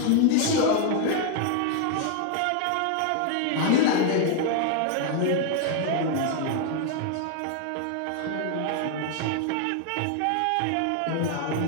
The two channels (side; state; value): both; different; correlation 0.00